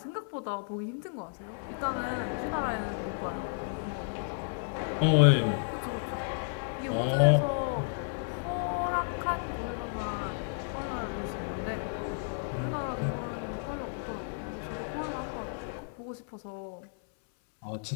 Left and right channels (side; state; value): right; silent; 56 dB below the other